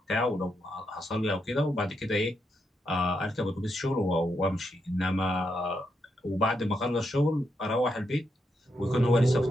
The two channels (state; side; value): normal; both; correlation 0.82